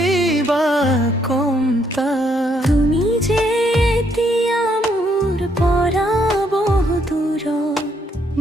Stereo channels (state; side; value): normal; both; correlation 0.72